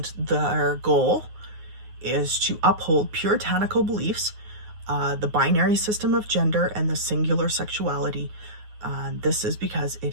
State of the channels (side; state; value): left; late; 9.5 ms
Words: their goal is to uphold puritanical beliefs, the binary system of gender, and the singular sexuality. This is because